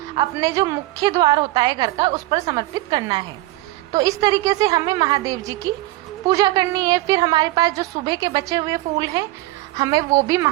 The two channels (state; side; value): quieter; left; 18.1 dB